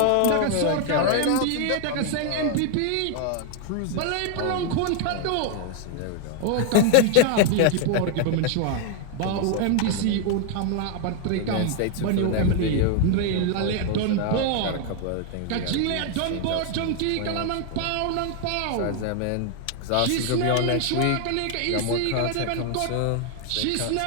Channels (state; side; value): different; both; correlation 0.00